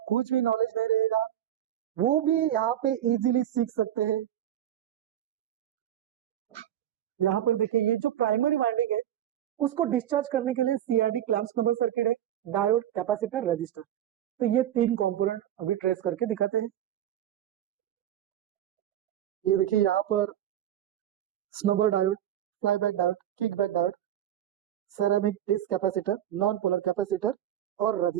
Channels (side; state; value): left; quieter; 11.4 dB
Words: कुछ भी नॉलेज नहीं रहेगा वो भी यहाँ पे इजीली सीख सकते हैं। यहाँ पर देखिए ये जो प्राइमरी वाइंडिंग है उसको डिस्चार्ज करने के लिए सीआरडी क्लैंप्स नंबर सर्किट है, डायोड, कैपेसिटर, रजिस्टर। तो ये तीन कंपोनेंट अभी ट्रेस करके दिखाते हैं। ये देखिए यहाँ पर snubber diode, flyback diode, kickback diode, ceramic disc capacitor, non polar capacitor और